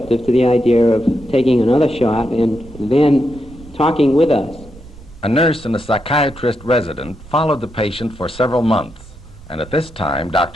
to the idea of taking another shot and then talking with us. A nurse and a psychiatrist resident followed the patient for several months, and at this time,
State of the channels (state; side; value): noise; right; rumble, 20 dB below the sound